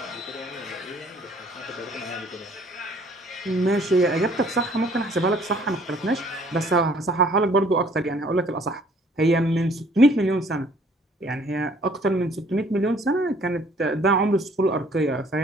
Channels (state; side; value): normal; both; correlation 0.58